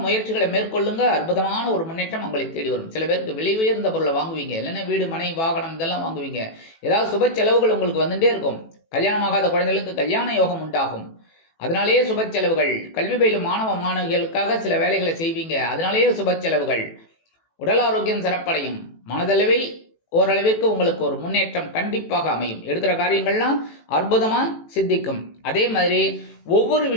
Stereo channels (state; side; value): late; right; 18 ms